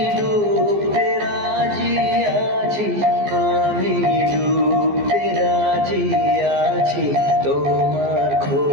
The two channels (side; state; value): left; late; 14 ms